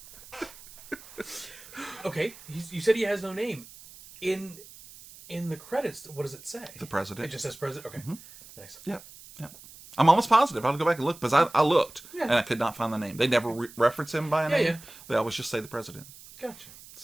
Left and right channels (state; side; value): noise; right; hiss, 19 dB below the sound